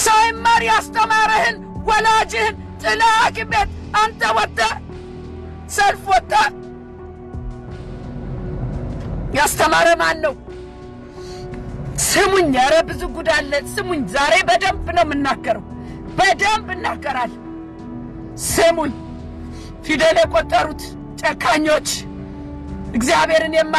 ሳይማር ያስተማረህን ወላጅህን ጥለህ ሐኪም ቤት አንተ ወጥተህ ሰልፍ ወጥተህ ያስተማረ ማን ነው? ስሙኝ፣ ኧረ ብዙ ጉድ አለ። ስሙኝ፣ ዛሬ በደንብ ነው የምናገረው፣ በደንብ እናገራለሁ። ስሙኝ፣ ፊደል የቆጠሩት ጨካኞች፣ እግዚአብሔርን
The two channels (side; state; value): both; identical; correlation 1.00